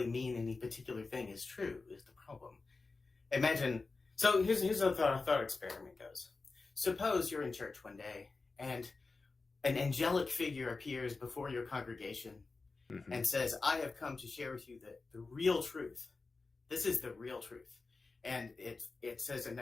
mean any particular thing is true, is the problem. Imagine, so here's how the thought experiment goes. Suppose you're in church one day and an angelic figure appears before your congregation and says, I have come to share with you the real truth. This is the real truth. And it says, and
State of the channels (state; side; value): quieter; right; 3.9 dB